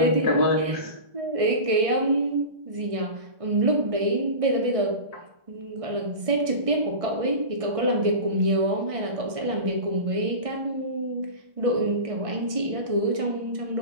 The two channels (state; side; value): late; left; 1.6 ms